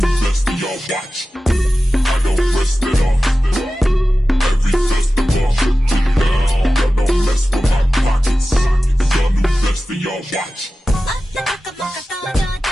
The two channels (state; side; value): normal; both; correlation 0.94